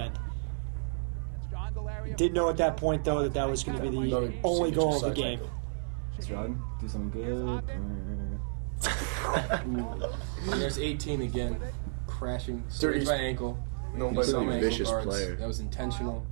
Didn't know at that point, though, that was going to be the only goal of the game. Let's run, do something good. There's 18 again, crashing straight by ankle. Nobody's a vicious player. That was intentional.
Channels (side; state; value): left; silent; digital silence